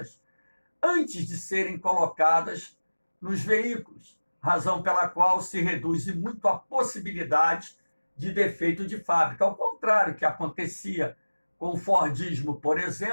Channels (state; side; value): inverted; both; correlation -1.00